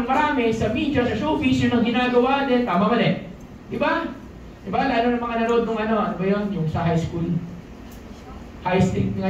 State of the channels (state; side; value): identical; both; correlation 1.00